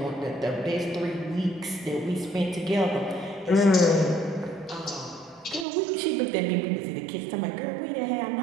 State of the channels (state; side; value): drops out; left; at 5.7 s